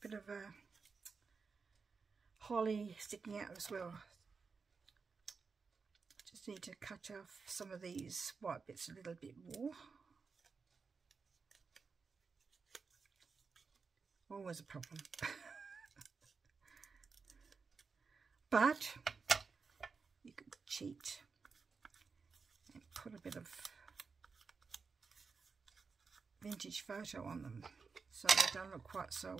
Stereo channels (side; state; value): left; quieter; 5.0 dB